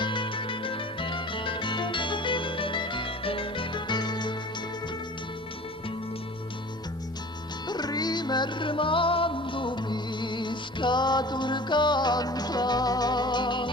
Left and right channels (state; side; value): normal; both; correlation 0.42